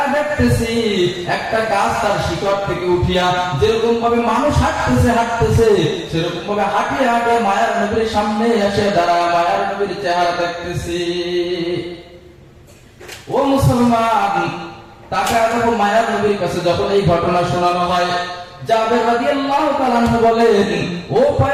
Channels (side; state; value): both; identical; correlation 1.00